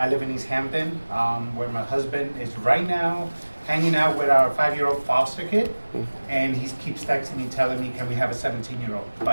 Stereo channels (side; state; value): both; inverted; correlation -1.00